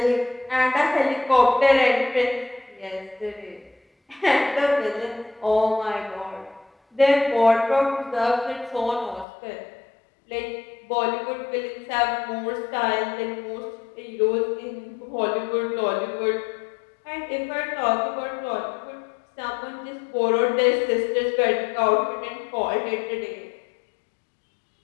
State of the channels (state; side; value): drops out; right; at 9.2 s